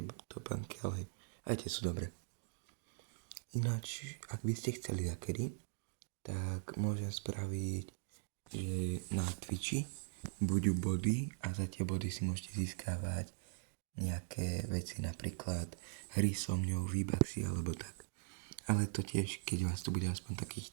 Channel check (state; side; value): silent; left; digital silence